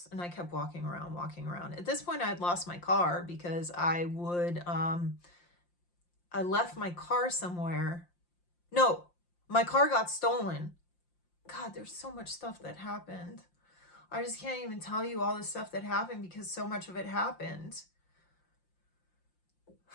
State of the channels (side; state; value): right; late; 5.7 ms